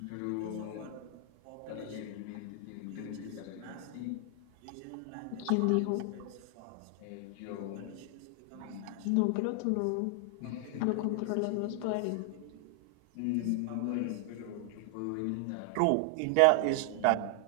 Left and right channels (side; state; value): both; different; correlation 0.00